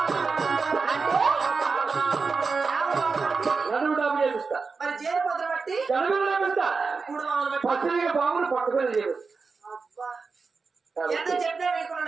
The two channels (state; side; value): quieter; left; 4.6 dB